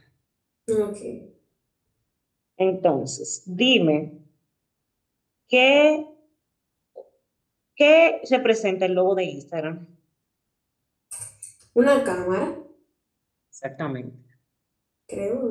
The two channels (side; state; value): both; identical; correlation 1.00